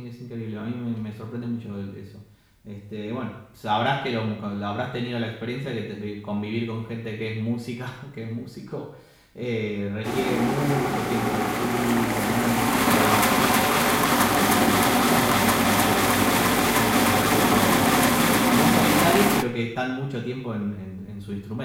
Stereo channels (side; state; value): both; identical; correlation 1.00